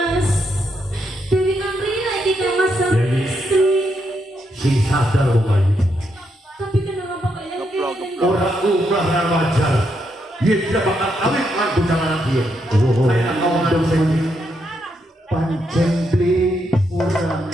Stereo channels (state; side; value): normal; both; correlation 0.79